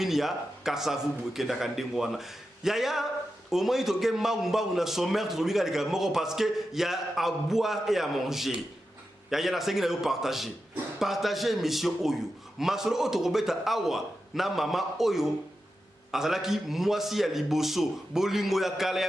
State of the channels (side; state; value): both; normal; correlation 0.90